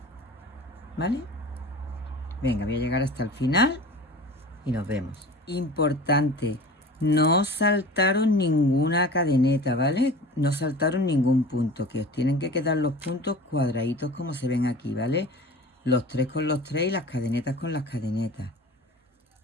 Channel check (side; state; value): both; normal; correlation 0.38